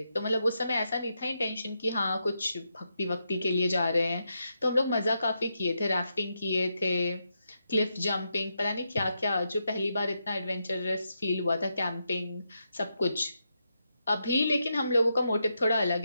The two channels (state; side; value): inverted; both; correlation -0.84